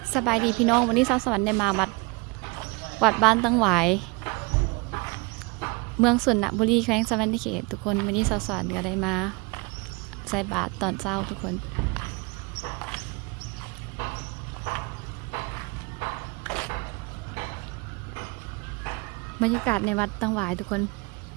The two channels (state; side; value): quieter; left; 28.8 dB